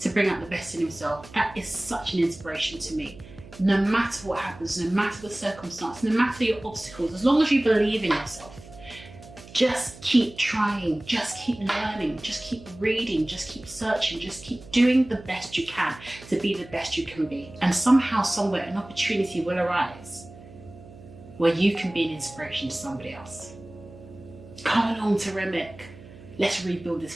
bring out the best in himself. That is such an inspiration to me. No matter what happens, no matter the circumstance, no matter your obstacles, as long as you believe in yourself, Just keep trying, just keep learning, just keep reading, just keep searching, just keep doing the best you can to be the best you can be. And somehow, somewhere, an opportunity will arise where you can be an inspiration to somebody else. Come along to Remick. Let's rebuild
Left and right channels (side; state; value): right; noise; hum, 19 dB below the sound